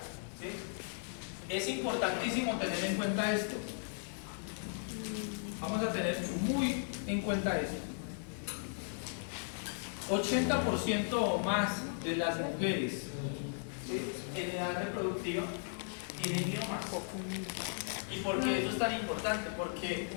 ¿Sí? Es importantísimo tener en cuenta esto. Vamos a tener muy en cuenta esto. 80% o más de las mujeres, ¿sí?, en edad reproductiva tienen miomas. ¿Y por qué eso es tan importante? Porque,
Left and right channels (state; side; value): silent; right; digital silence